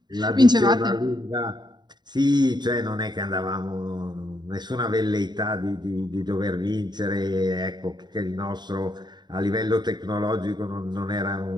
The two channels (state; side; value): late; left; 0.21 ms